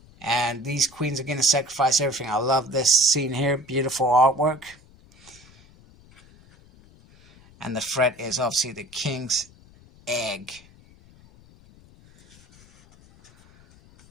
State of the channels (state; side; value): noise; left; rumble, 26 dB below the sound